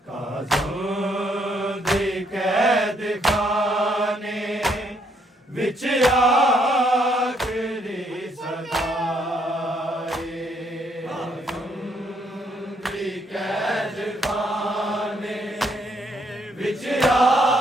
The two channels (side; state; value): both; normal; correlation 0.71